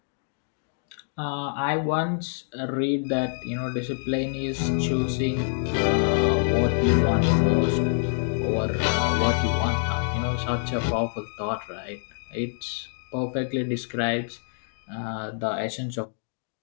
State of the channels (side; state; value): right; silent; digital silence